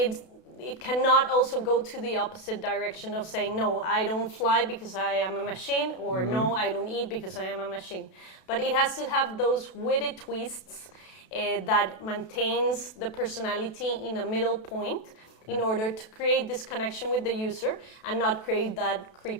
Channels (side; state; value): right; late; 32 ms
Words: cannot also go to the opposite direction of saying, no, I don't fly because I am a machine, or no, I don't eat because I am a machine. But it has to have those witty twists that maintains the personality in a middle point in order to create this connection with the user and not create that